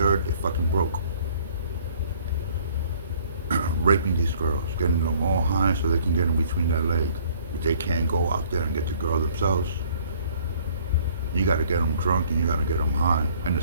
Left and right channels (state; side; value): inverted; both; correlation -0.57